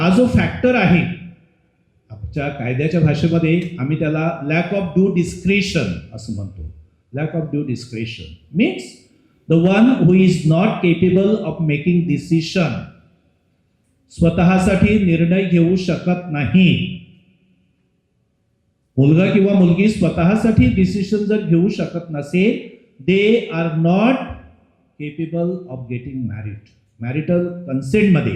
जो फॅक्टर आहे आमच्या कायद्याच्या भाषेमध्ये आम्ही त्याला लॅक ऑफ ड्यू डिस्क्रिशन असं म्हणतो. Lack of due discretion means the one who is not capable of making decision, स्वतःसाठी निर्णय घेऊ शकत नाही. मुलगा किंवा मुलगी स्वतःसाठी डिसिशन जर घेऊ शकत नसेल, they are not capable of getting married. Marital कन्सेंटमध्ये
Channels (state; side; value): identical; both; correlation 1.00